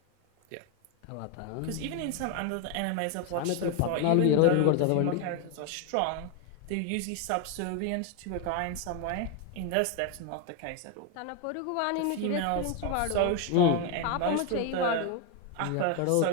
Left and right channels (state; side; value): different; both; correlation 0.01